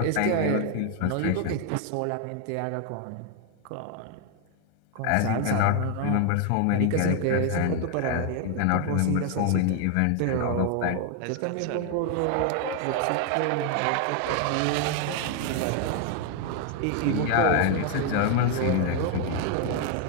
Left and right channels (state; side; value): different; both; correlation 0.01